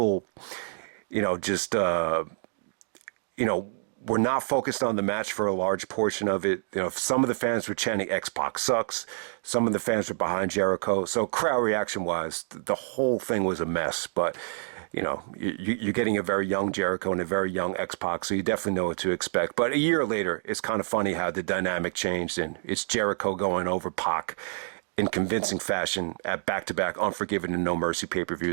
we're not focused on the match for a large portion of it. Some of the fans were chanting X-Pac sucks. Some of the fans were behind Jericho. So crowd reaction wise, the whole thing was a mess. But, you're getting a very young Jericho and a very young X-Pac, so you definitely know what to expect. But a year later, it's kind of funny how the dynamic changed, and it's Jericho going over Pac in convincing fashion at back-to-back Unforgiven and No Mercy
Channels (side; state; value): left; silent; digital silence